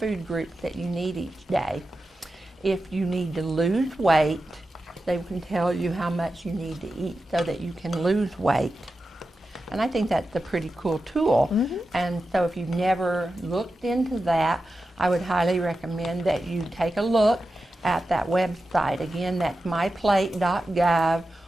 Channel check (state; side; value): normal; both; correlation 0.91